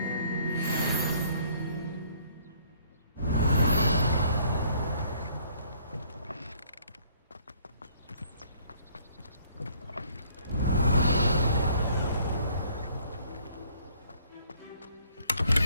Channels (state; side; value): inverted; both; correlation -0.61